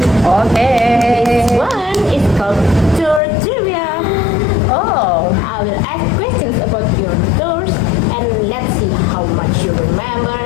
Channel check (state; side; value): drops out; right; at 3.2 s